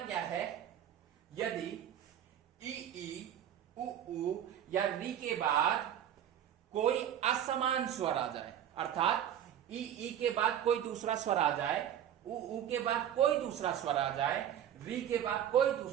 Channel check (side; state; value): left; quieter; 10.2 dB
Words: है, यदि ई उ या री के बाद कोई असमान स्वर आ जाए, अर्थात ई के बाद कोई दूसरा स्वर आ जाए, उ के बाद कोई दूसरा स्वर आ जाए, री के बाद कोई